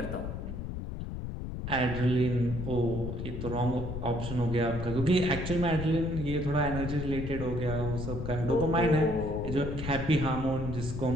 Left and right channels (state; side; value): noise; left; rumble, 6 dB below the sound